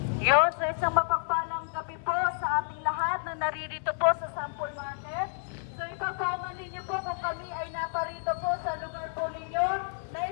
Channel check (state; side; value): silent; right; digital silence